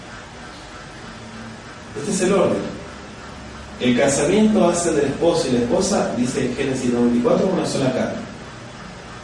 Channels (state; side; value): identical; both; correlation 1.00